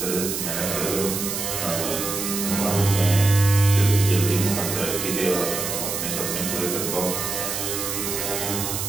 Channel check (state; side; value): noise; right; hiss, 3 dB below the sound